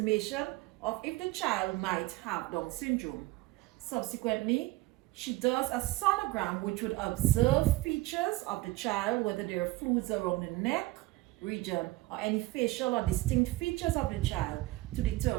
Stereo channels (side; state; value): left; quieter; 19.5 dB